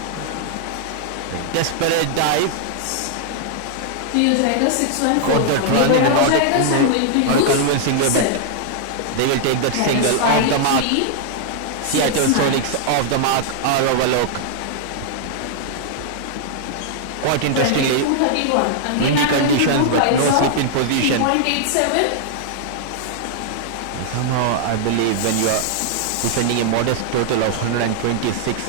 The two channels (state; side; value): different; both; correlation 0.00